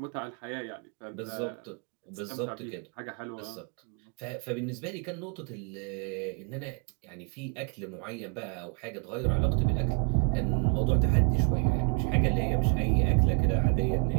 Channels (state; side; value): quieter; left; 39.9 dB